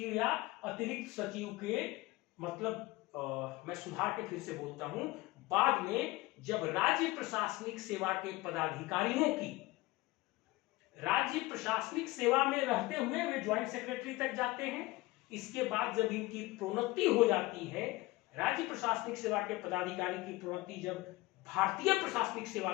या अतिरिक्त सचिव के, मतलब मैं सुधार के फिर से बोलता हूं, बाद में जब राज्य प्रशासनिक सेवा के पदाधिकारियों की राज्य प्रशासनिक सेवा में रहते हुए वे ज्वाइंट सेक्रेटरी तक जाते हैं। इसके बाद जब इनकी प्रोन्नति हो जाती है, राज्य प्रशासनिक सेवा के पदाधिकारी की प्रोन्नति जब भारतीय प्रशासनिक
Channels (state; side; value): quieter; right; 20.4 dB